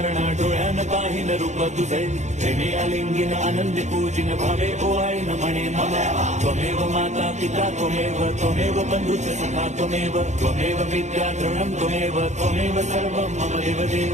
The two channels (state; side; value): late; left; 0.34 ms